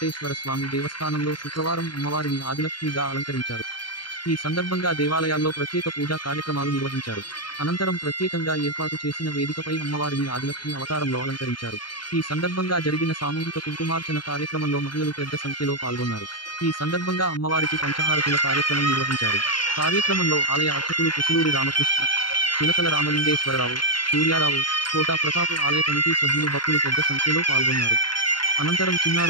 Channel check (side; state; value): right; late; 0.72 ms